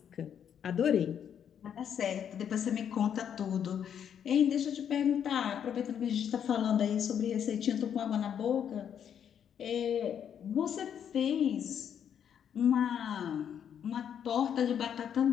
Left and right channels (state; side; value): quieter; right; 8.6 dB